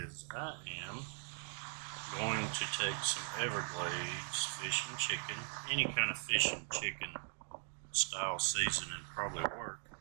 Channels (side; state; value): left; silent; 51 dB below the other